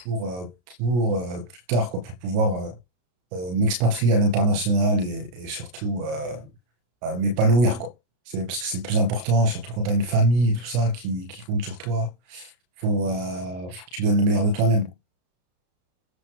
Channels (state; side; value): late; left; 33 ms